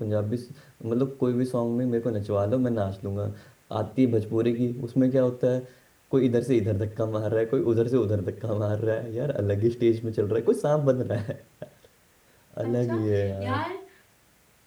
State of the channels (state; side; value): identical; both; correlation 1.00